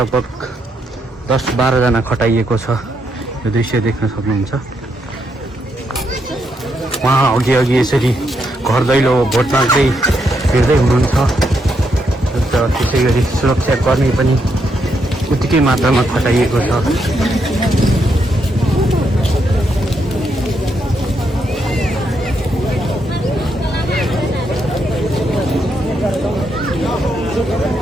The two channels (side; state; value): both; normal; correlation 0.79